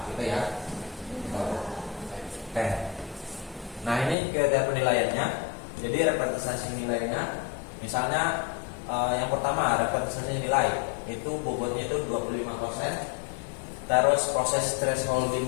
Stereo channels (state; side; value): drops out; right; at 4.2 s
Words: gitu ya. Oke. Nah ini kriteria penilaiannya. Jadi representasi nilainya, misalnya yang pertama representasi nilai itu bobotnya itu 25%. Terus proses